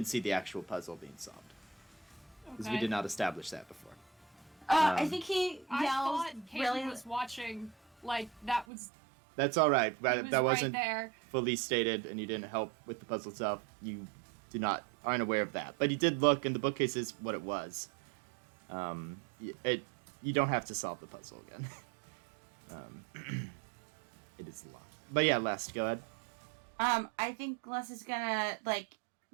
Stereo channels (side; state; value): left; drops out; at 8.7 s